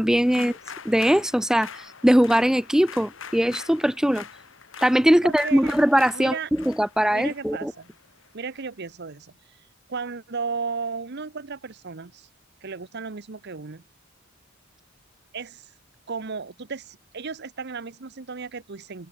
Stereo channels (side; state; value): both; normal; correlation 0.89